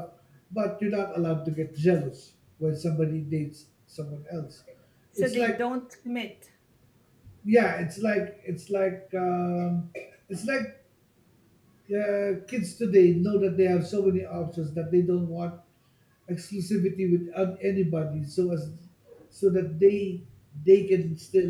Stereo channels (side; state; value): both; identical; correlation 1.00